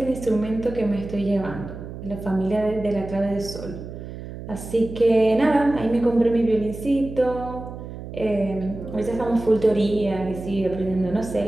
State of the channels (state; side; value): noise; right; hum, 11 dB below the sound